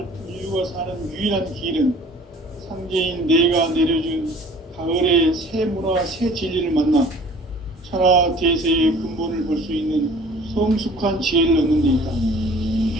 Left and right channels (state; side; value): normal; both; correlation 0.50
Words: 인류가 사는 유일한 길은 상제인 내가 내려준 가을의 새 문화, 새 진리를 만나 천하 대세의 근본을 볼 수 있는 성숙한 지혜를 얻는 데